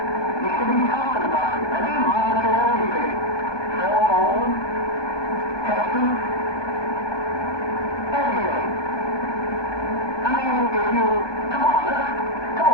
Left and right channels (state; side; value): late; right; 1.2 ms